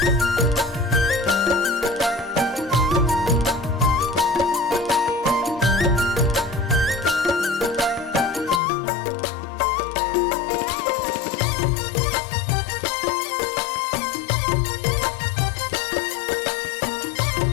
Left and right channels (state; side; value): drops out; right; at 8.6 s